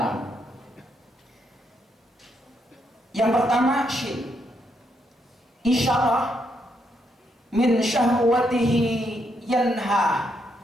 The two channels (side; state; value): both; normal; correlation 0.77